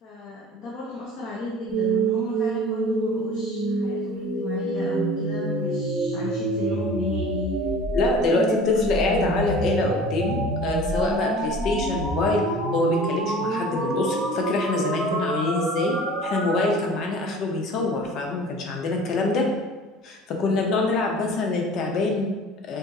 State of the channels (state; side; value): normal; both; correlation 0.43